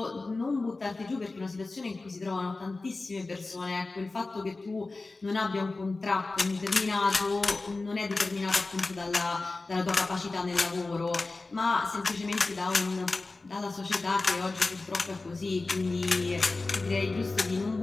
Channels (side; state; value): right; quieter; 3.4 dB